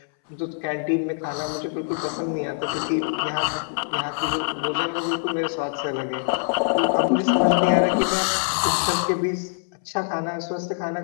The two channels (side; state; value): right; silent; 62 dB below the other